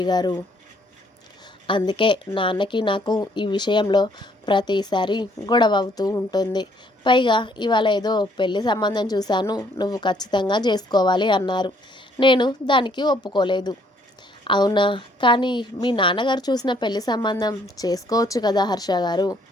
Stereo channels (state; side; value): normal; both; correlation 0.65